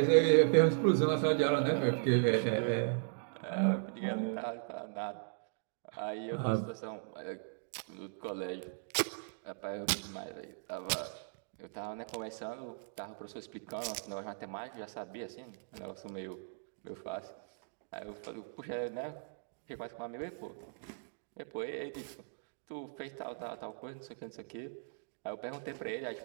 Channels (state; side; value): silent; left; digital silence